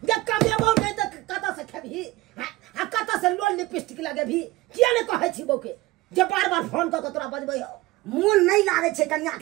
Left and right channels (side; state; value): left; quieter; 19.3 dB